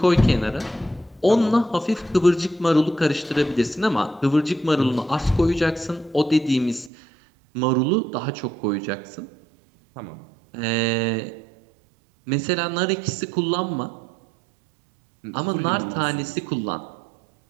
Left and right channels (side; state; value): left; drops out; at 6.9 s